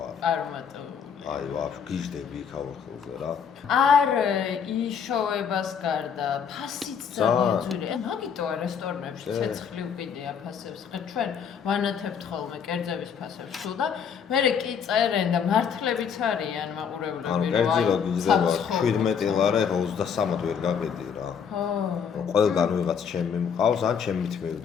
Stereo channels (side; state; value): right; quieter; 7.1 dB